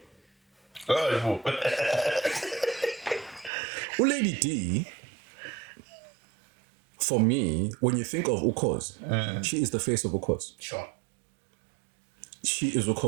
Lady D, for me, when you think of Ukhozi, she is the face of Ukhozi. Sure. She is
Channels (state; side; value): drops out; left; at 3.5 s